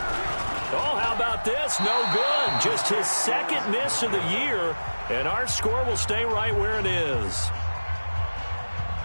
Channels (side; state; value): both; inverted; correlation -1.00